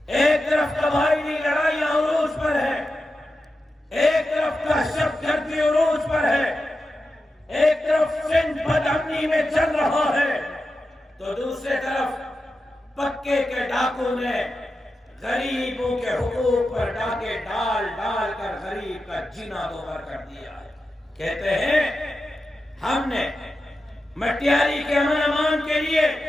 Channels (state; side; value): normal; both; correlation 0.91